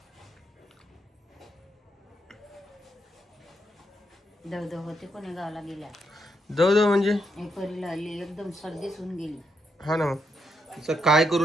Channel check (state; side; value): normal; both; correlation 0.80